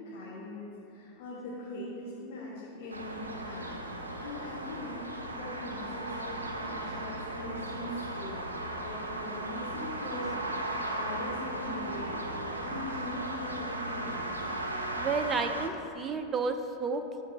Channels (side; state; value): both; normal; correlation -0.13